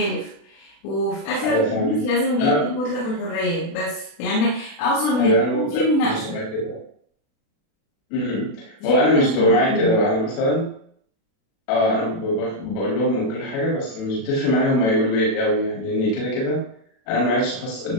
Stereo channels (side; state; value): right; late; 36 ms